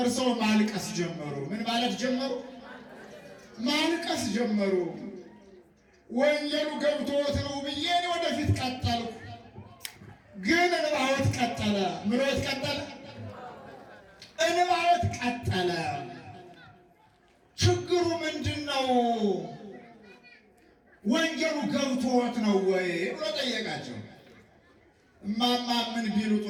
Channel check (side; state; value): both; identical; correlation 1.00